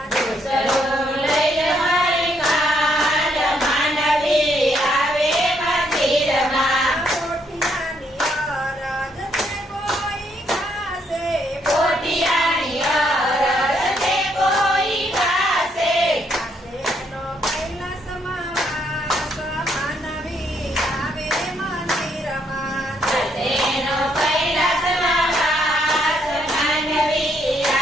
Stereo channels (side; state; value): both; normal; correlation 0.73